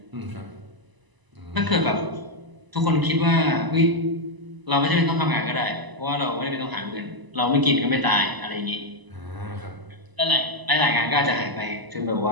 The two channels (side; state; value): left; late; 1.0 ms